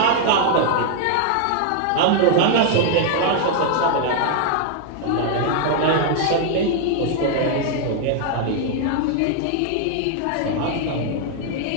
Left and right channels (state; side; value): different; both; correlation 0.00